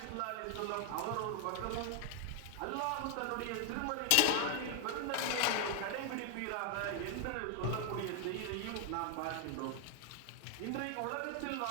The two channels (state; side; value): different; both; correlation 0.00